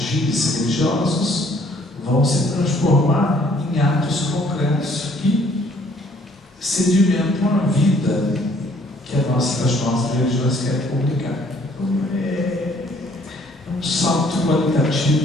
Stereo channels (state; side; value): normal; both; correlation 0.62